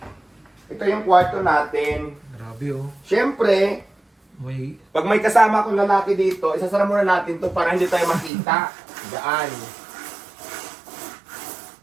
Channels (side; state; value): left; drops out; at 8.3 s